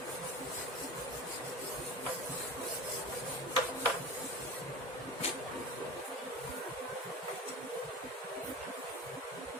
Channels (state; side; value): normal; both; correlation 0.33